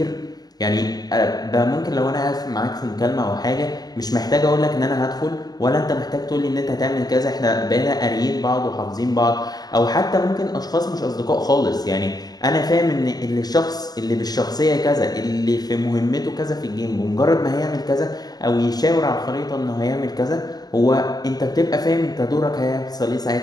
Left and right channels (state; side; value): late; right; 0.19 ms